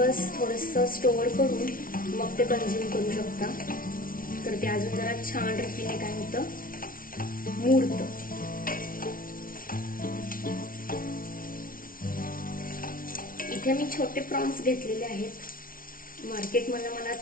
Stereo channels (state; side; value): late; right; 0.41 ms